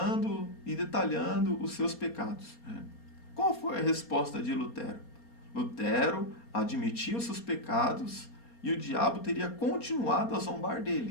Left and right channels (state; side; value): late; right; 4.3 ms